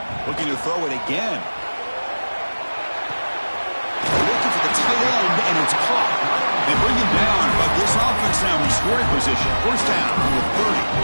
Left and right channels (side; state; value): both; inverted; correlation -1.00